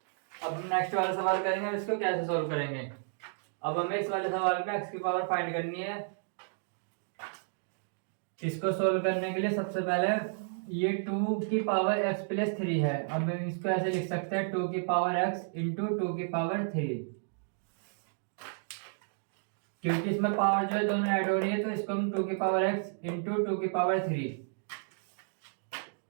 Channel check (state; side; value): silent; left; digital silence